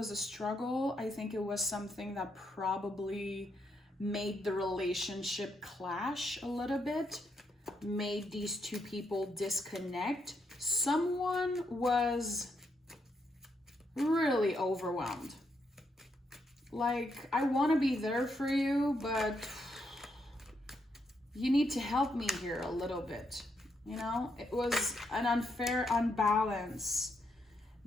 a struggle. I think it was something that probably made the relationship clash a little bit, made these two people disconnect. Someone was really overwhelmed. Like, I want to be there for you, but you need to help me here a little bit. You know, it was an unfair unbalance.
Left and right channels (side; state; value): both; normal; correlation 0.79